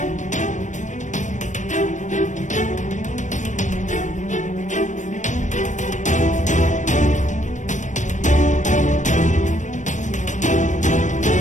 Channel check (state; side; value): late; right; 0.35 ms